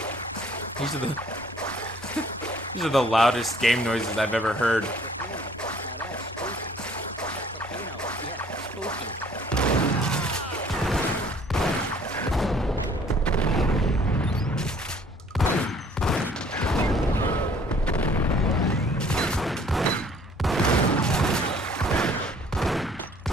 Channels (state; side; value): normal; both; correlation 0.57